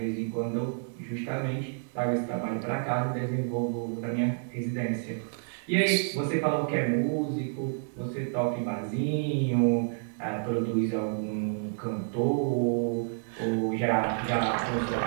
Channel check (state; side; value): silent; left; digital silence